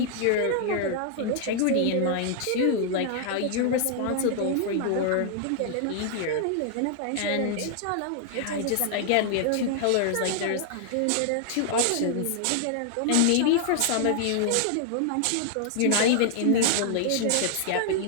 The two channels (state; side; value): different; both; correlation 0.00